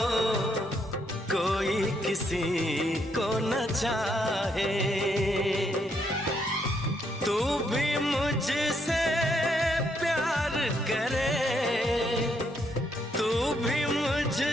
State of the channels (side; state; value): both; normal; correlation 0.75